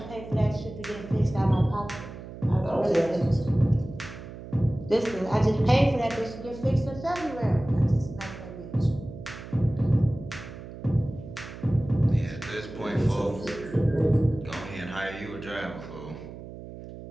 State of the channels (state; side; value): noise; right; hum, 13 dB below the sound